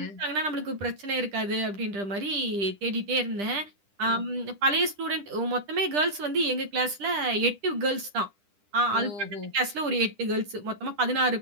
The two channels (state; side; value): late; left; 10 ms